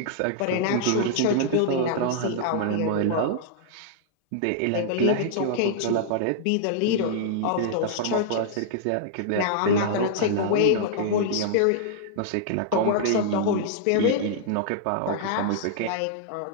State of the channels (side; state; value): both; different; correlation -0.01